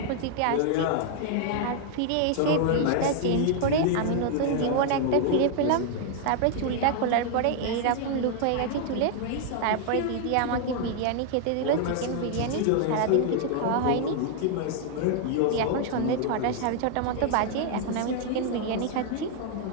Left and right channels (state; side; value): different; both; correlation 0.00